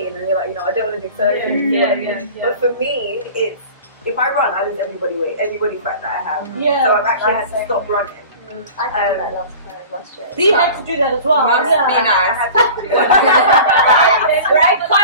and you're like, I don't want to do surgery. you know what I mean? Yeah. But for me, it's if I run, I lose everybody weight, everybody fat that I have. yeah. So I've actually had to stop running. I did that last year. Dee had to do that as well. Must yeah. be nice. Right?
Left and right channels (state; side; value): inverted; both; correlation -0.40